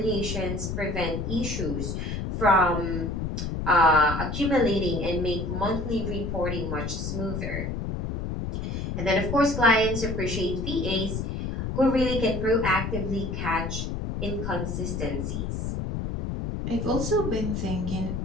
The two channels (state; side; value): noise; left; rumble, 3 dB below the sound